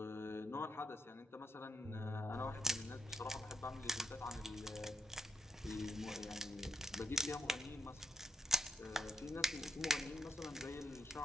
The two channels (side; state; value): both; normal; correlation 0.80